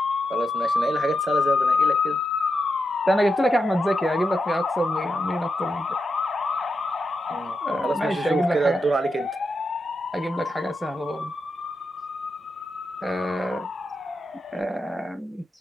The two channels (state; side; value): normal; both; correlation 0.86